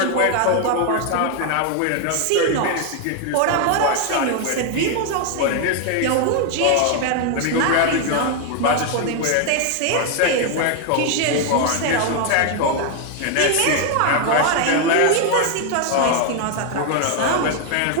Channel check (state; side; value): different; both; correlation 0.00